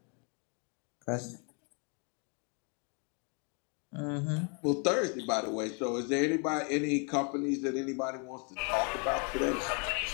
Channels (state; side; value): quieter; right; 36.6 dB